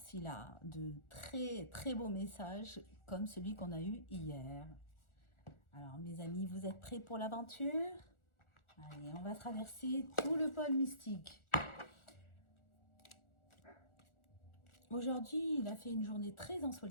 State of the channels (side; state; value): right; late; 1.4 ms